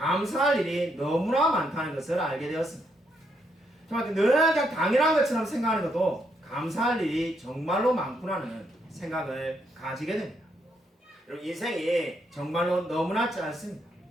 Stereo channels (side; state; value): both; normal; correlation 0.76